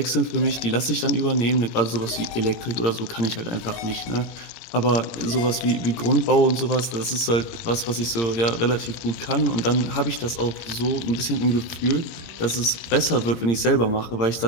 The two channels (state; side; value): late; right; 17 ms